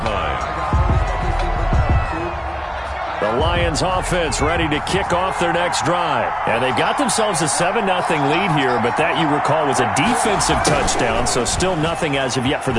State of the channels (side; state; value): both; identical; correlation 1.00